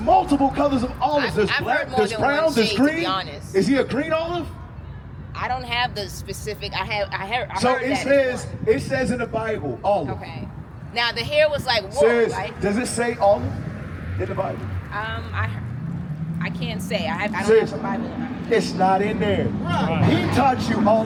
colors of olives. There's I've black, heard more there's than brown, one there's shade, green. to be honest. Is he a green olive? I don't have the specific. I heard So that it says in the Bible, olive. Okay. Now the hair was like wool, Says, right? does it say olive in the Bible? I can't say. I don't Sis, have a Bible in my it's not in there. He taught you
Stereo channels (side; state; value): both; identical; correlation 1.00